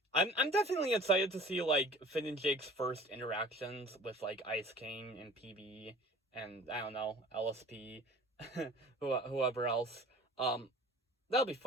definitely excited to see like Finn and Jake's first interactions with like Ice King and PB and I don't know, LSP, whoever else. That'll be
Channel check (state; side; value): normal; both; correlation 0.45